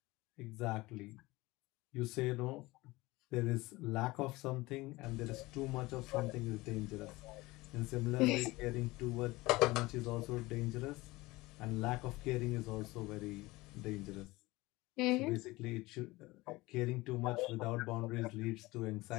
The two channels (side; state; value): right; quieter; 20.8 dB